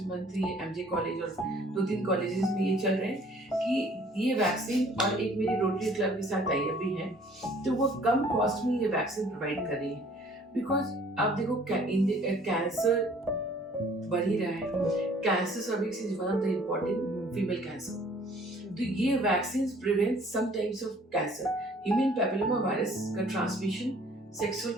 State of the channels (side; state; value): both; normal; correlation 0.56